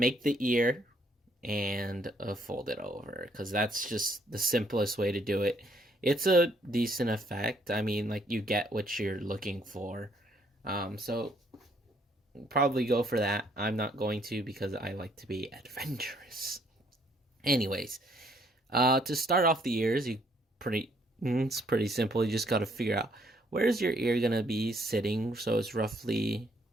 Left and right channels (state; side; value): normal; both; correlation 0.67